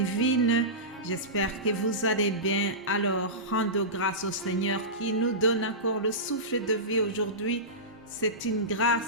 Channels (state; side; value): normal; both; correlation -0.19